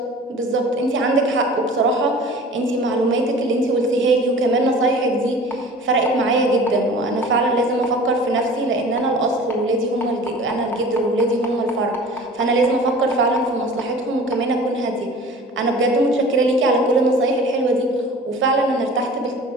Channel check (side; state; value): both; normal; correlation 0.43